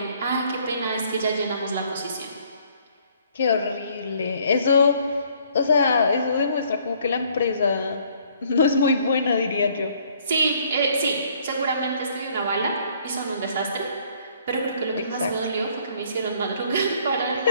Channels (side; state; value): both; inverted; correlation -0.62